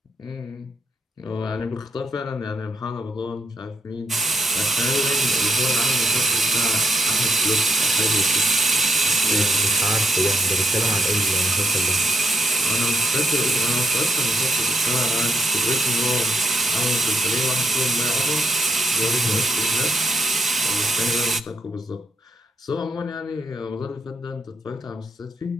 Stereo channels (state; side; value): normal; both; correlation 0.78